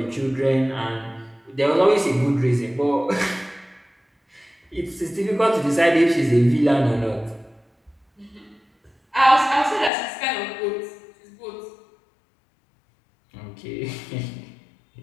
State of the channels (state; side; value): drops out; right; at 9.9 s